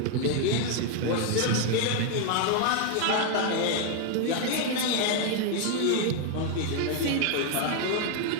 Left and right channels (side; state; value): both; different; correlation 0.00